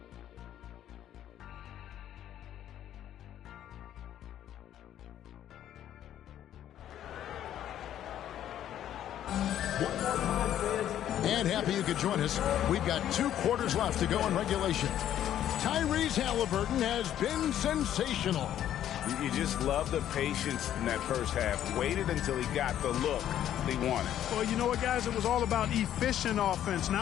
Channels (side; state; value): right; quieter; 11.2 dB